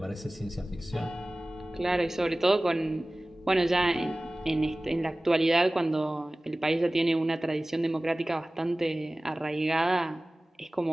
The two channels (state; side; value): normal; both; correlation 0.98